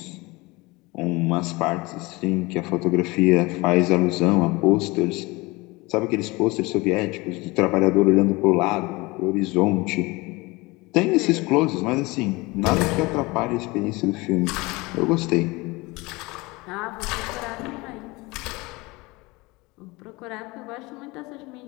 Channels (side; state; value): right; quieter; 23.4 dB